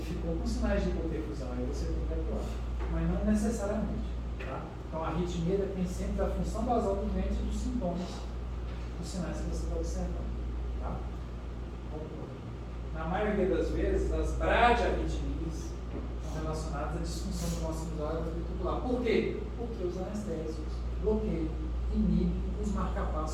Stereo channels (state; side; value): identical; both; correlation 1.00